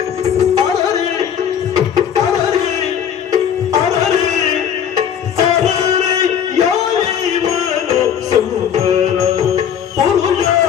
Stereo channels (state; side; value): quieter; right; 8.6 dB